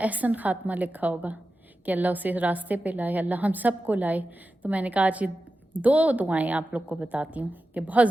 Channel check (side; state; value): both; normal; correlation 0.92